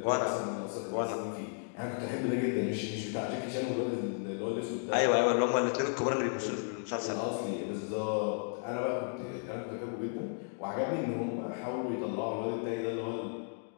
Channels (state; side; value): silent; right; 55 dB below the other